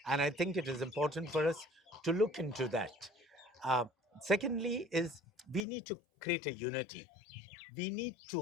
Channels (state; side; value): drops out; right; at 5.7 s